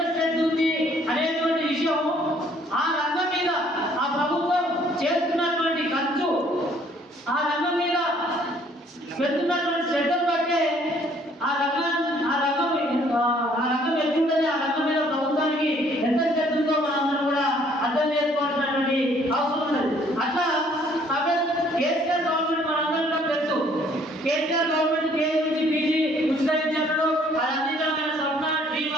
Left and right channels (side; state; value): both; normal; correlation 0.61